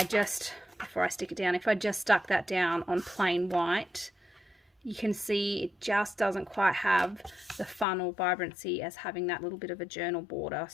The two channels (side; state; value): right; drops out; at 7.9 s